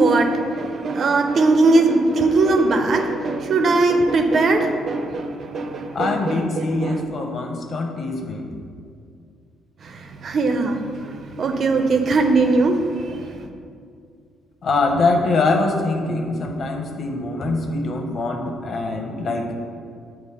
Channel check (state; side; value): normal; both; correlation 0.77